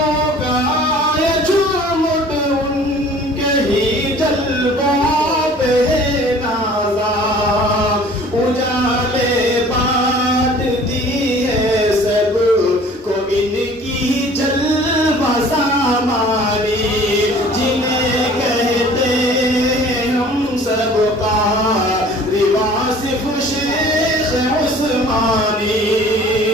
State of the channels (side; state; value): both; normal; correlation 0.49